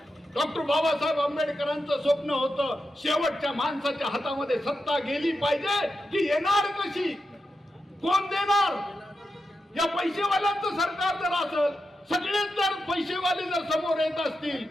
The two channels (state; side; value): normal; both; correlation 0.88